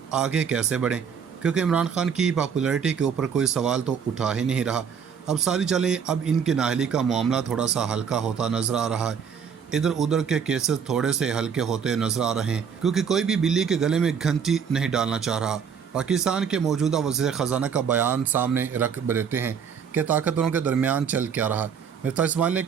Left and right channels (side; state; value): left; quieter; 7.0 dB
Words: आगे कैसे बढ़ें, क्योंकि इमरान खान की पॉपुलैरिटी के ऊपर कोई सवाल तो उठा ही नहीं रहा। अब सारी चलें, अब इनके नाअहली का मामला थोड़ा सा हल्का होता नज़र आ रहा है। इधर उधर के केसेस थोड़े से हल्के होते नज़र आ रहे हैं, क्योंकि कोई भी बिल्ली के गले में घंटी नहीं डालना चाह रहा। पाकिस्तान के मौजूदा वज़ीर ख़जाना का बयान सामने रख देते हैं कि ताकतवरों के दरमियान चल क्या रहा। मिर्ज़ा इस्माइल ने